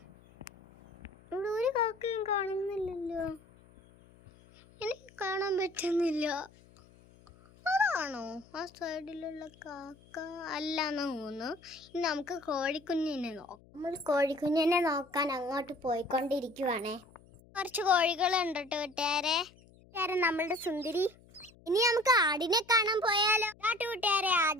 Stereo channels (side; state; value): left; noise; hum, 26 dB below the sound